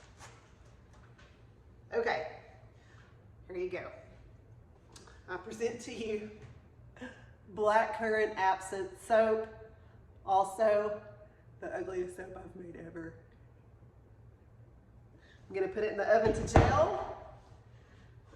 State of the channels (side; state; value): both; identical; correlation 1.00